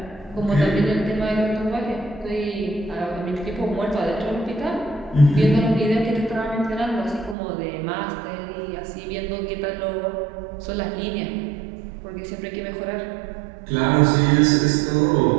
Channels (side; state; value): left; drops out; at 7.4 s